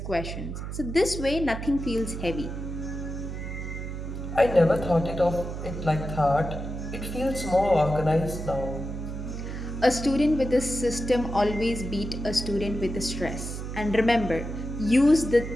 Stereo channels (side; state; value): right; noise; hum, 6 dB below the sound